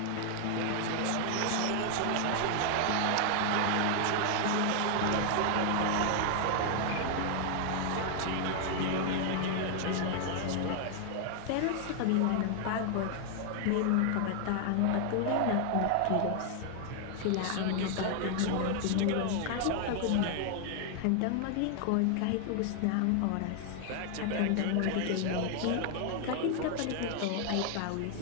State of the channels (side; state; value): both; different; correlation 0.00